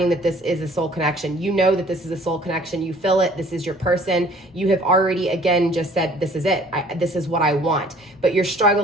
that this is a soul connection. You know that this is a soul connection. You feel it. This is your person. You have already, again, just said, this is it. This is what I want. But you're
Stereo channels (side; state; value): both; normal; correlation 0.55